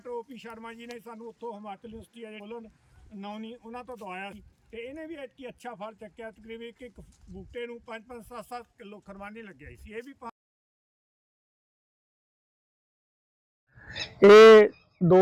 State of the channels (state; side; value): identical; both; correlation 1.00